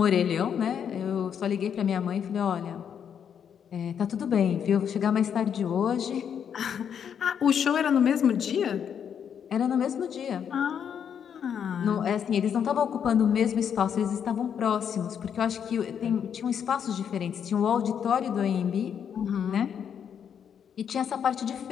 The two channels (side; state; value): right; quieter; 8.1 dB